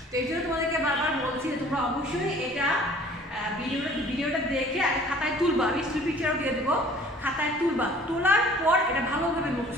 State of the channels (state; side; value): normal; both; correlation 0.51